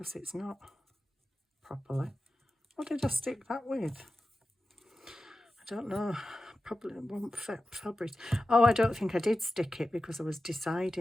it's not properly. What did I stick that with? I don't know. Probably won't fabric. Oh, I don't think I did stick it because I was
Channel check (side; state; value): both; normal; correlation 0.93